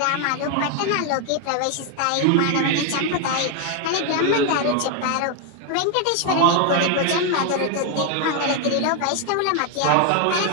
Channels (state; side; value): different; both; correlation 0.01